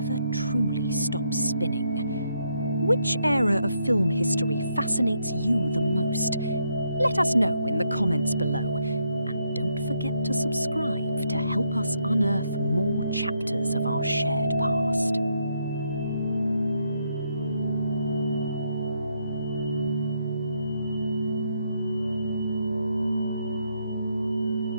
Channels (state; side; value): inverted; both; correlation -0.76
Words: truly stops spinning. Which era of film history fascinates you the most? Let us know in the comments below, and don't forget to subscribe to help us unearth more chapters of our shared past.